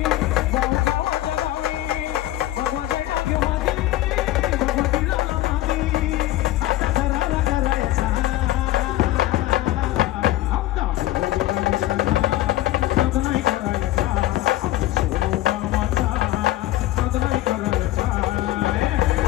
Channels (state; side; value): quieter; right; 15.6 dB